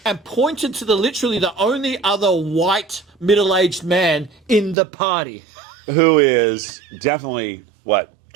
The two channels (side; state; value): left; drops out; at 4.8 s